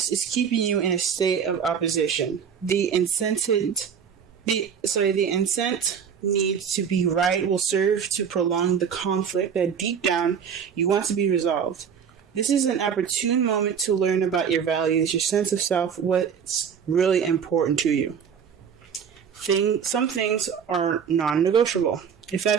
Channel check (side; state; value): left; quieter; 7.3 dB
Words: is keeping you in a state of opposition. The incent need to be right will serve to prolong the conflict that deep down you want to be resolved. This is an opportune moment to learn about your values, your sense of self, what's really important to you. Some things are non-negotiable. If